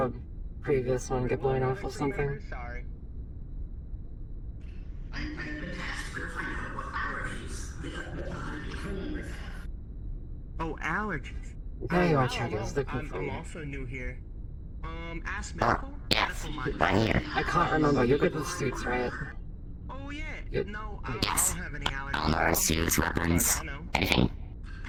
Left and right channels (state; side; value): identical; both; correlation 1.00